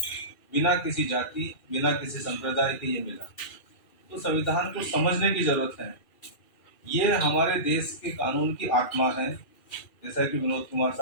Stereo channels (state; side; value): late; right; 2.4 ms